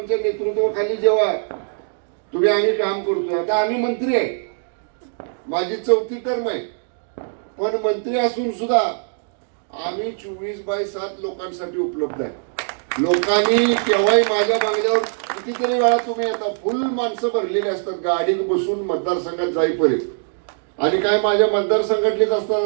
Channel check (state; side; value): silent; left; digital silence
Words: नेतृत्वाखाली जेव्हा आम्ही काम करतो. आता आम्ही मंत्री आहे, माझी 4थी टर्म आहे, पण मंत्री असून सुद्धा आम्ही 24/7 लोकांसाठी उपलब्ध आहे. लोकांनी केव्हाही माझ्या बंगल्यावर कितीतरी वेळा तुम्ही येता, फुल माणसं भरलेली असतात गाडीत बसून मतदारसंघात जाईपर्यंत. आणि काय माझ्या मतदारसंघातलीच असतात